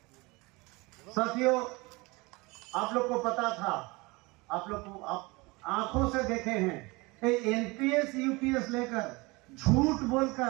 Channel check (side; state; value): left; quieter; 24.5 dB